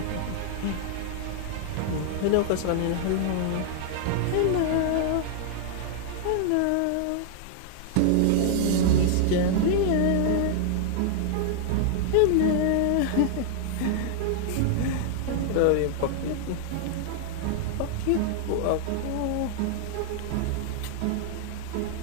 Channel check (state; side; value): different; both; correlation 0.00